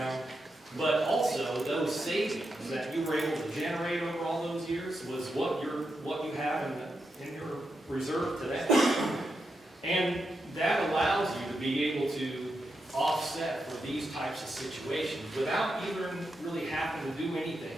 but also those savings that you were able to generate over all those years was what you have in your reserve today. And that allows you to be able to offset for these types of situations without even really having to do anything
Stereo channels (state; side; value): normal; both; correlation 0.86